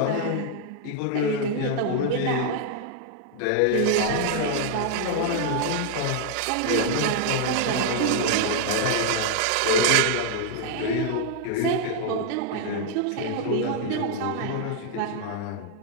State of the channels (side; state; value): both; different; correlation 0.00